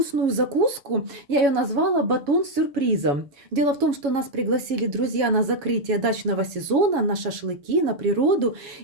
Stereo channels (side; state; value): left; late; 7.2 ms